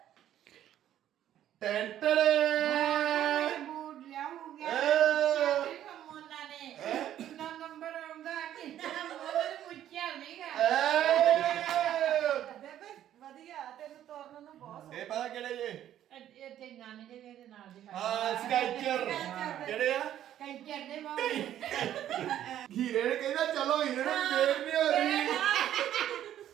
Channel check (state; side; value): quieter; left; 11.5 dB